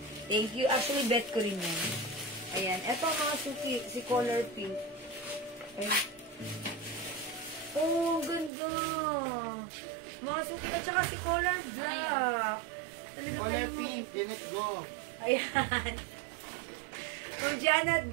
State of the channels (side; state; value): left; drops out; at 8.5 s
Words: Thank you. Actually, bet ko rin yan. Ayan. Ito, mga suki, si color pink. Ayan. Oh, ganda. Mga suki, at saka si color black. Color pink. Let's go. Ayan. For